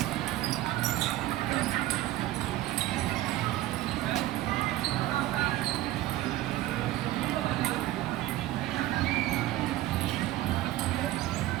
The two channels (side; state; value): left; quieter; 15.5 dB